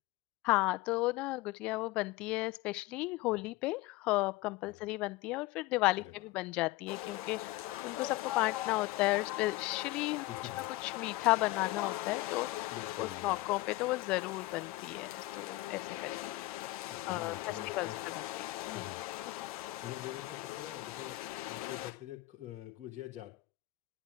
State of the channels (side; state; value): right; quieter; 19.5 dB